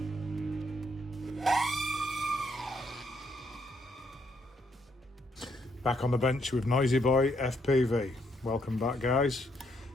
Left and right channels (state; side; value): normal; both; correlation 0.73